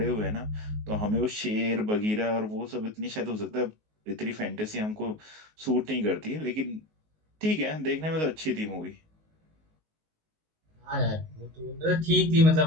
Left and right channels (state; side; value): late; left; 19 ms